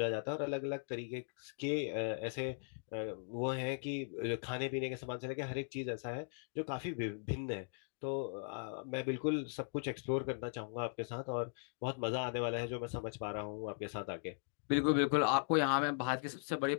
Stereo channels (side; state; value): right; silent; digital silence